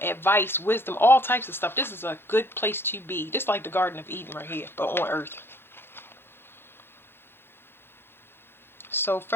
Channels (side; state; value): right; late; 0.11 ms